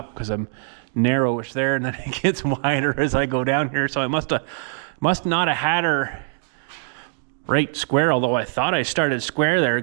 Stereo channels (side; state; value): left; silent; digital silence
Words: because I'm narrowish there, and then it gets wider as I go down here. So I must not have had her right square, although I thought I started square there,